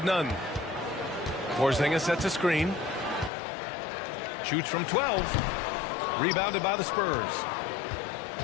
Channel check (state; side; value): drops out; right; at 3.3 s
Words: Nunn. Porzingis sets a screen. Shoots from 12. Rebounded by the Spurs.